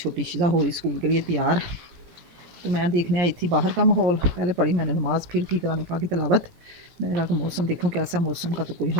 शिजा हो रही स्कूल के लिए तैयार। तो मैं देखने आई थी बाहर का माहौल। पहले पढ़ी मैंने नमाज़, फिर की कुरान पाक की तिलावत। मैंने कहा कि मौसम देखूँ कैसा। मौसम का तो कोई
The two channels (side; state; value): left; late; 17 ms